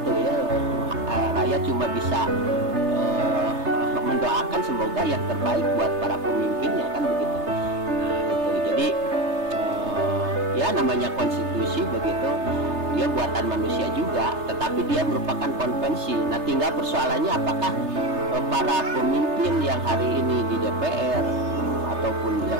ya. Rakyat cuma bisa mendoakan semoga yang terbaik buat para pemimpinnya kan begitu. Nah itu jadi ya namanya konstitusi begitu, dia buatan manusia juga, tetapi dia merupakan konvensi. Nah tinggal persoalannya apakah para pemimpin yang hari ini di DPR ataupun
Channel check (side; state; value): left; late; 3.3 ms